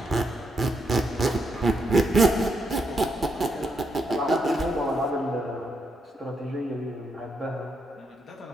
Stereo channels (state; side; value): normal; both; correlation 0.80